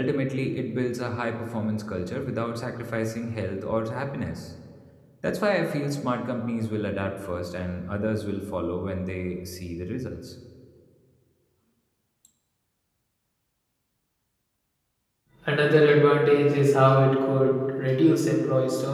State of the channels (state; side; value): identical; both; correlation 1.00